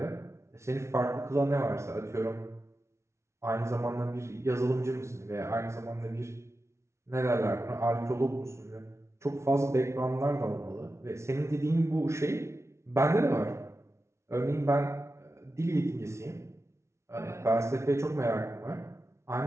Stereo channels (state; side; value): late; left; 0.13 ms